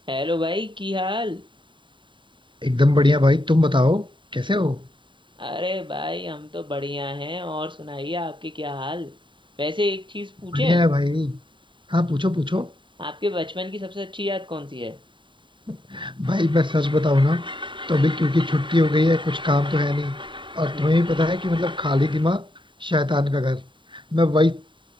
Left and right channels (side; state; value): left; late; 0.23 ms